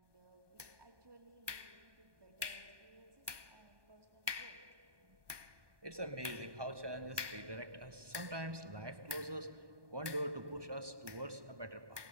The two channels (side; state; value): left; late; 1.2 ms